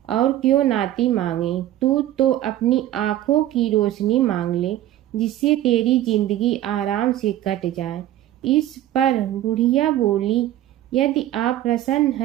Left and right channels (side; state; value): left; quieter; 13.4 dB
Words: और क्यों नाती मांगे? तू तो अपनी आँखों की रोशनी मांग ले, जिससे तेरी जिंदगी आराम से कट जाए। इस पर बुढ़िया बोली, यदि आप प्रसन्न